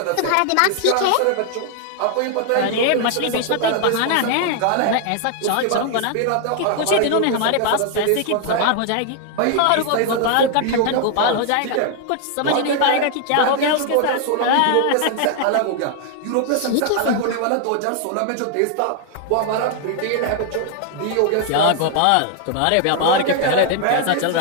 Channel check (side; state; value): both; different; correlation 0.00